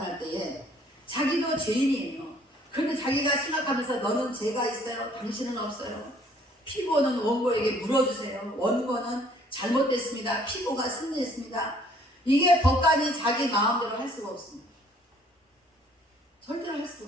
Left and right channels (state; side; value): normal; both; correlation 0.59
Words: 때에 자기도 죄인이에요. 그런데 자기가 생각하면서 너는 죄가 있어요, 당신은 없어요. 피고는 원고에게 물어주세요. 원고는 잘못됐습니다. 피고가 승리했습니다. 이게 법관이 자기 마음대로 할 수가 없습니다. 절대로 할